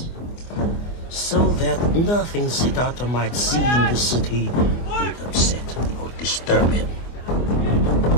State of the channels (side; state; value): right; late; 24 ms